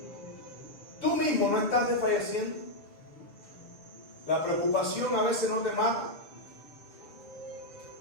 ¿Tú mismo no estás desfalleciendo? La preocupación a veces no te mata.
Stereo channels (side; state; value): right; late; 6.8 ms